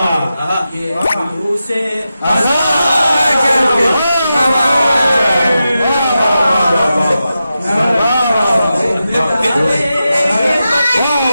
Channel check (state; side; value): inverted; both; correlation -0.90